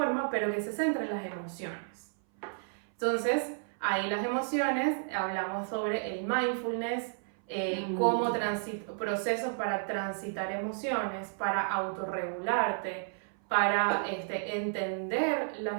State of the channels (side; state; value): left; silent; 56 dB below the other